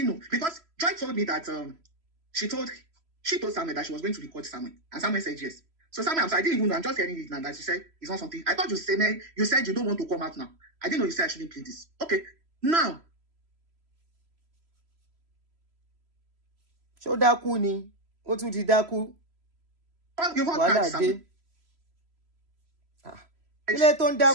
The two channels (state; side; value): late; left; 3.0 ms